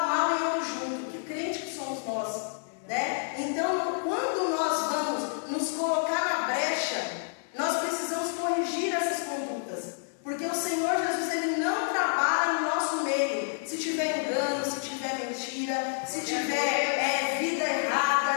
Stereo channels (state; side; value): silent; right; digital silence